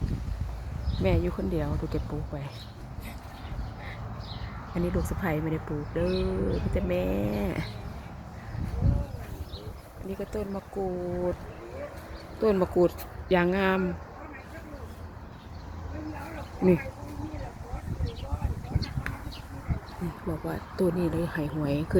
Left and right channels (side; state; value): both; identical; correlation 1.00